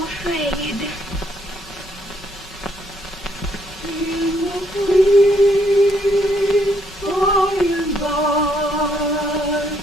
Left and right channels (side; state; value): both; normal; correlation 0.71